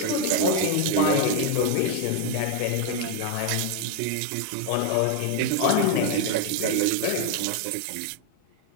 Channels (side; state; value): both; different; correlation 0.01